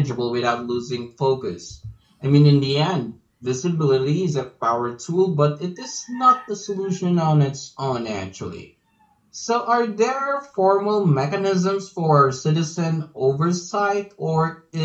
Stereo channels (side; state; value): both; identical; correlation 1.00